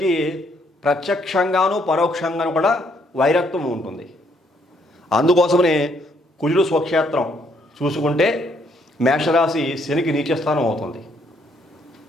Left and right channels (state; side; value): normal; both; correlation 0.70